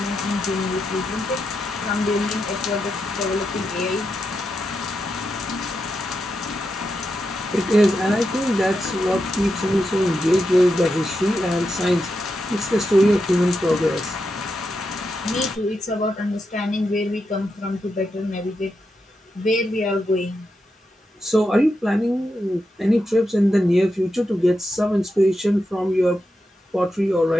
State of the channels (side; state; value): both; normal; correlation 0.86